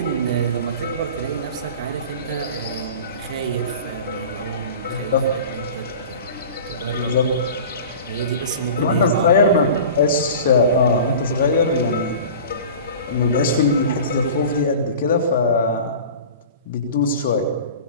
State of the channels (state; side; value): inverted; both; correlation -0.38